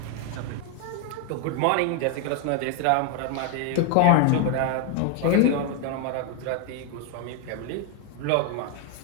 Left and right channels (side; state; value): both; different; correlation 0.01